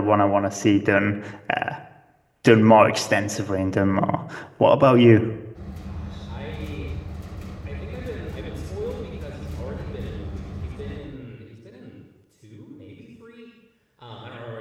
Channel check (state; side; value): identical; both; correlation 1.00